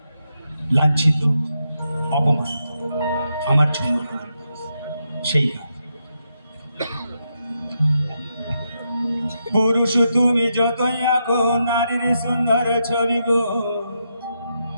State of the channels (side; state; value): both; inverted; correlation -0.83